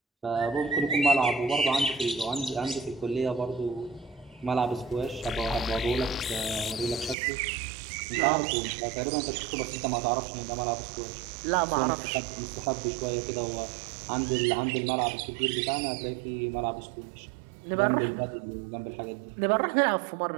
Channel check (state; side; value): drops out; left; at 7.2 s